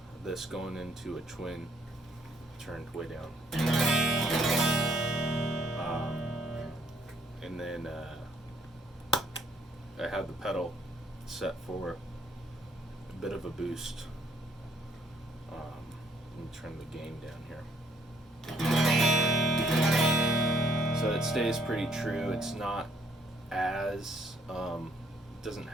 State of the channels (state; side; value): normal; both; correlation 0.66